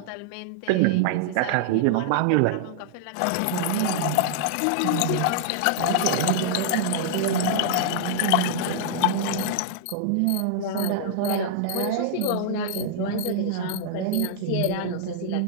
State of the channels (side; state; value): both; different; correlation -0.01